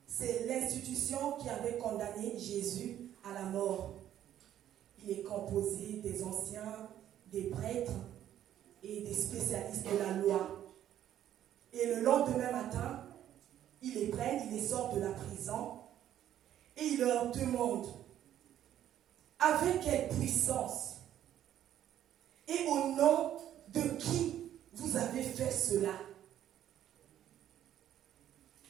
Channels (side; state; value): left; quieter; 11.3 dB